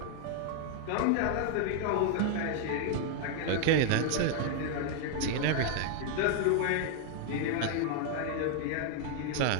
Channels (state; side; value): different; both; correlation 0.00